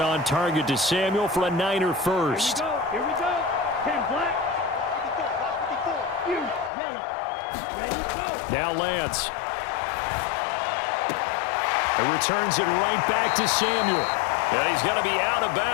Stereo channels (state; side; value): drops out; right; at 6.7 s